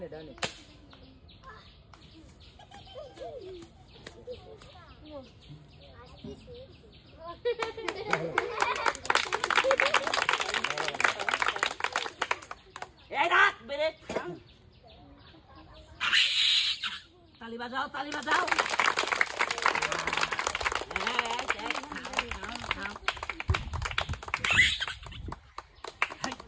ডানে এই রাখ বেরে তালি বাজাও তালি বাজাও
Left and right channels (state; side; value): identical; both; correlation 1.00